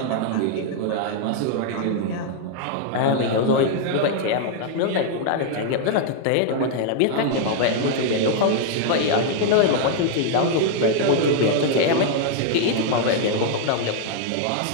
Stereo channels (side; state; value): both; different; correlation 0.00